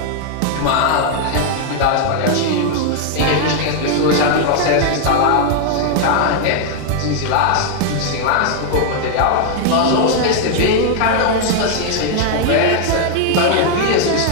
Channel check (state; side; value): different; both; correlation 0.00